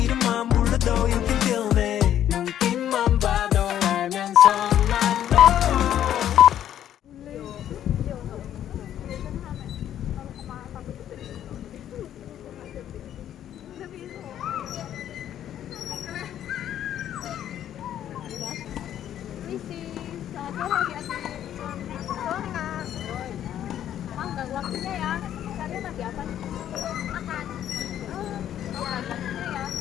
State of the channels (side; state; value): right; quieter; 10.9 dB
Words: 이름만 불러도 you can feel me. 눈빛만 봐도 알면서 난 너. Waktunya ya, kalian lagi apa nih? Makan. Waktunya ya.